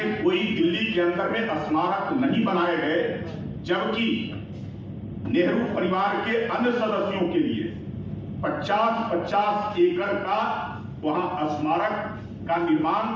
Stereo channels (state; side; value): identical; both; correlation 1.00